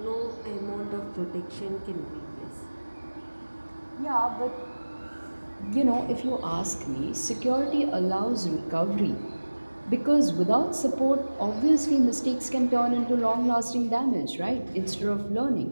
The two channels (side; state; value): both; inverted; correlation -1.00